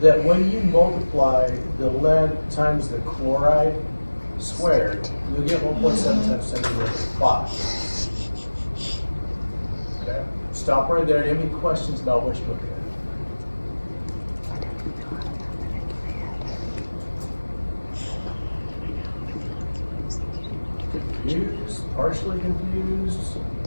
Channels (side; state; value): both; inverted; correlation -1.00